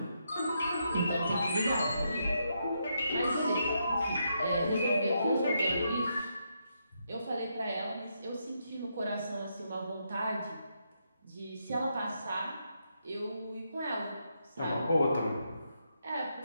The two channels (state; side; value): inverted; both; correlation -0.80